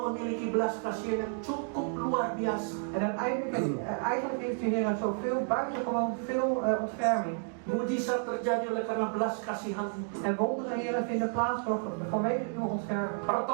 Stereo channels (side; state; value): left; silent; 57 dB below the other